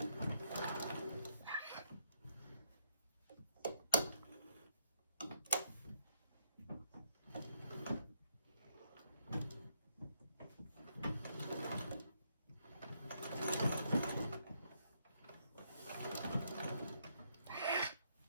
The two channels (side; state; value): both; inverted; correlation -0.73